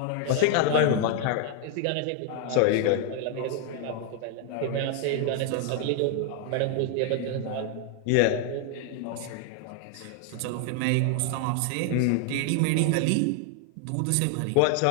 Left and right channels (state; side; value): different; both; correlation 0.00